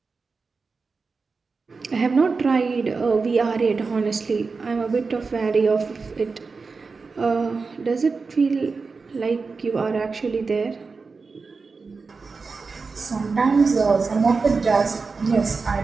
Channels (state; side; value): quieter; left; 4.5 dB